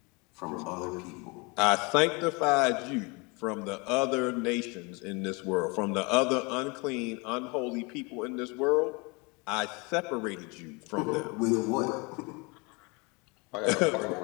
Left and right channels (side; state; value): right; quieter; 28.5 dB